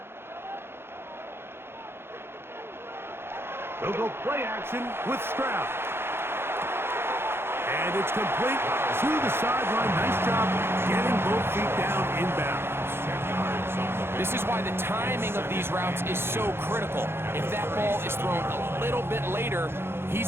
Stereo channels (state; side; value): late; left; 0.11 ms